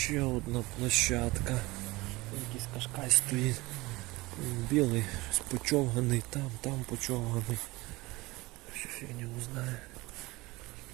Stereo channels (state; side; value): quieter; left; 21.5 dB